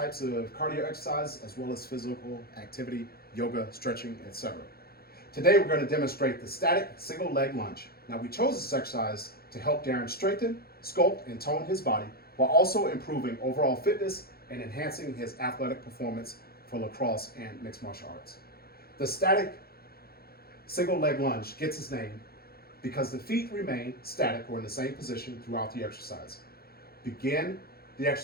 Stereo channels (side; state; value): right; late; 0.44 ms